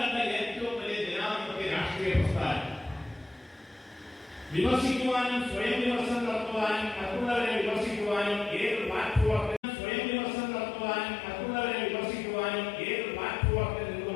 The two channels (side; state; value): right; drops out; at 9.6 s